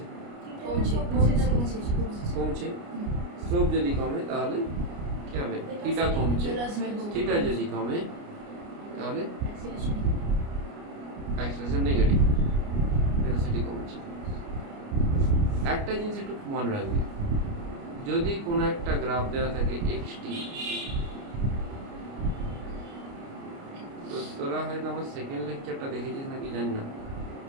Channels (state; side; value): late; left; 29 ms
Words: কমছে। স্লোপ যদি কমে তাহলে কি হবে, থিটা কমছে, থিটা যদি কমে তাহলে অ্যাক্সেলারেশন নেগেটিভ, ভেলোসিটি কমছে। একটা জিনিস একটু মনে রাখবি, যদি কোনো একটা গ্রাফ দেওয়া থাকে এক্সটি, তো তোরা হয়তো আমার সেকেন্ড লেকচারটা দেখেছিস নাকি জানি না,